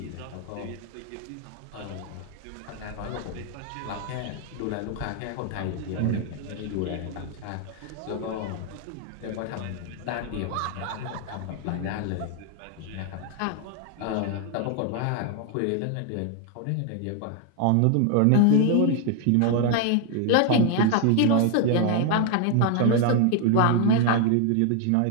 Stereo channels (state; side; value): different; both; correlation 0.00